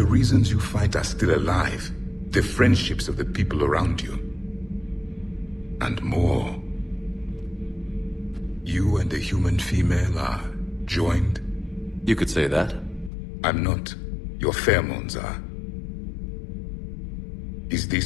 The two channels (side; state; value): right; drops out; at 13.1 s